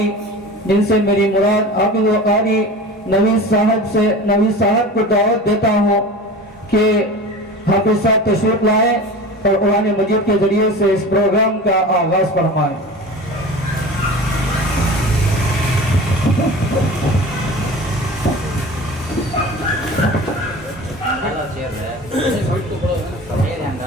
जिनसे मेरी मुराद हाफिज व कारी नवीद साहब को दावत देता हूँ कि حافظ صاحب تشریف لائے اور قرآن مجید کے ذریعے سے اس پروگرام کا آغاز فرمائیں۔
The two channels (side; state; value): both; normal; correlation 0.35